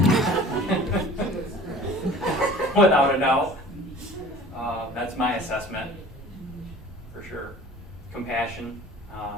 without a doubt. That's my assessment, for sure. Compassion,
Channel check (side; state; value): both; normal; correlation 0.46